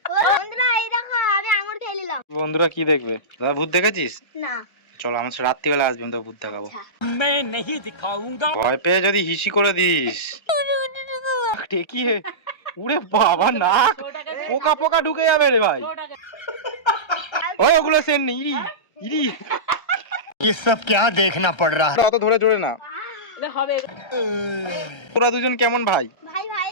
বন্ধুরা এই দেখো আমি আঙুর খেয়ে নিলাম। বন্ধুরা কি দেখবে? দাদা ভূত দেখেছিস? না। চলো আমার সাথে রাত্রিবেলা আসবেন, তো ভূত দেখাবো। ভয় পেয়ে যদি হিসি করে দিস কি উড়ে বাবা নাক পোকা পোকা ঢুকে যাবে রে ভাই। ওই ওগুলো সেন নেই ইরি ইরি। ये सब क्या देखना पड़ रहा है? অত ধরে জোরে না। তোরা দুজন কেমন ভাই? ভাই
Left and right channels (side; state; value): right; late; 1.3 ms